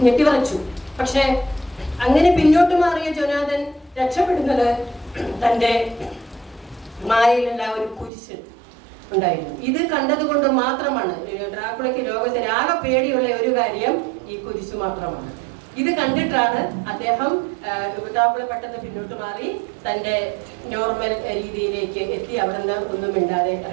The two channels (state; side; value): drops out; left; at 8.1 s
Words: ഞെട്ടിവറച്ചു. പക്ഷെ അങ്ങനെ പിന്നോട്ട് മാറിയ ജൊനാഥൻ രക്ഷപ്പെടുന്നത് തന്റെ മായയിലുള്ള ഒരു കുരിശ് ഉണ്ടായിരുന്നു. ഇത് കണ്ടതുകൊണ്ട് മാത്രമാണ് ഡ്രാക്കുളയ്ക്ക് ലോകത്തിൽ ആകെ പേടിയുള്ള ഒരു കാര്യം ഈ കുരിശ് മാത്രമാണ്. ഇത് കണ്ടിട്ടാണ് അദ്ദേഹം ഡ്രാക്കുള പെട്ടെന്ന് പിന്നോട്ട് മാറി തന്റെ നോർമൽ രീതിയിലേക്ക് എത്തി അവിടെ നിന്ന് ഒന്നും മിണ്ടാതെ